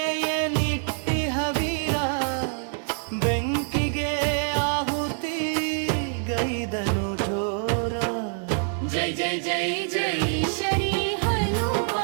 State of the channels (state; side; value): silent; left; 61 dB below the other